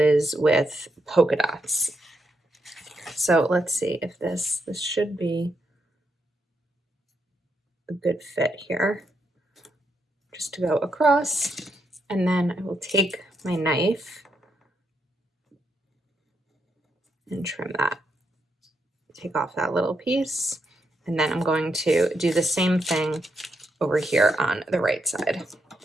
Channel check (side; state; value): both; normal; correlation 0.80